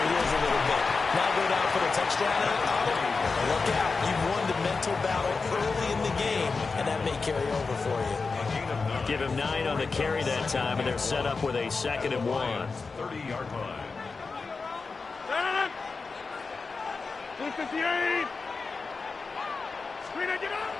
heels a little bit. Now go down for the touchdown on it. Look out. You've won the mental battle early in the game, and that may carry over for you. Give him 9 on the carry that time, and they're set up with a 2nd and 1. 30-yard line. 58.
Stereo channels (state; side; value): quieter; right; 4.4 dB